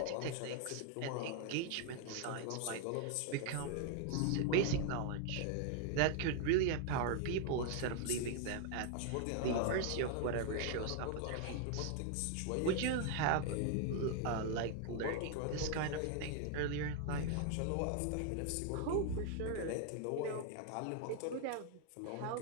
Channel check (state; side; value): different; both; correlation 0.00